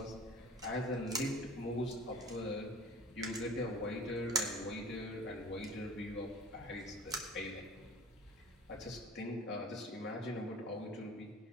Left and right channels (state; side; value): normal; both; correlation 0.43